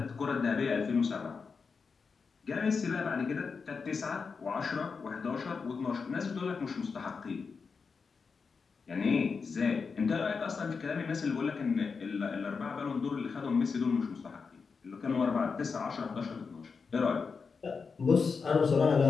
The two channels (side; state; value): right; quieter; 5.2 dB